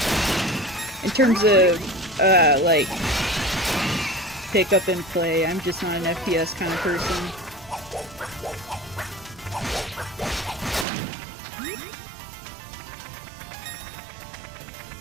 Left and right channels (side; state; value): left; drops out; at 10.9 s